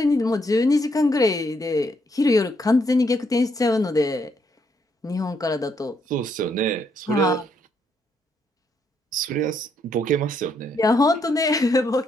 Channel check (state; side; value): normal; both; correlation 0.74